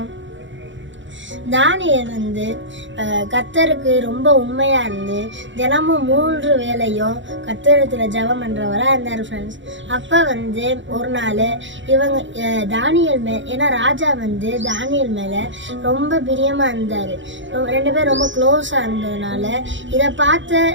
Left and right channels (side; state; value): left; late; 0.54 ms